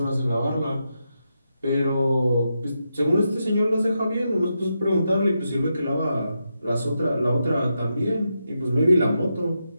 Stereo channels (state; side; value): inverted; both; correlation -0.85